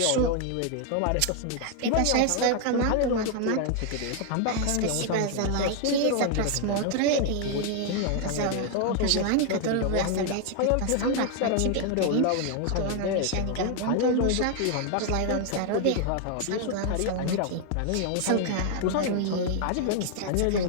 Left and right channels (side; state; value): both; different; correlation 0.00